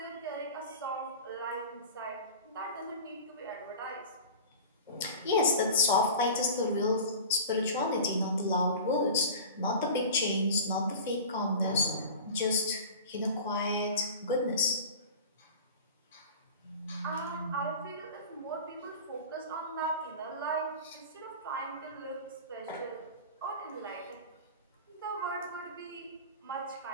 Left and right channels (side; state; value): both; inverted; correlation -0.35